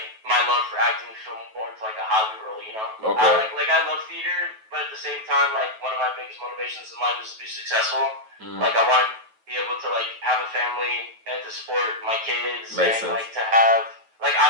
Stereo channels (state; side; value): late; left; 9.2 ms